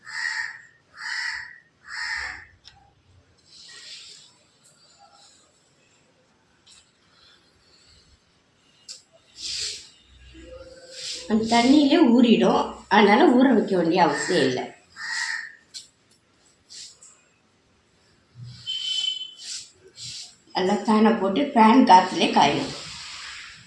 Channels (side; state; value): both; identical; correlation 1.00